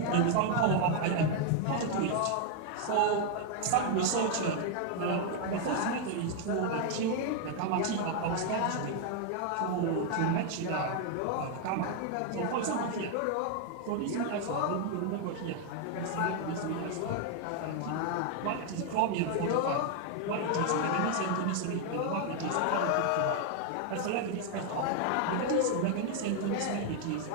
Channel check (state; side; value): different; both; correlation 0.00